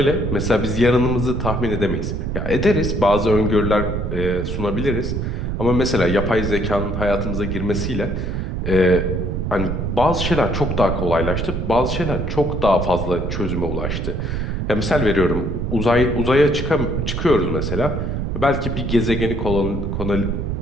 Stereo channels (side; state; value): right; noise; rumble, 2 dB below the sound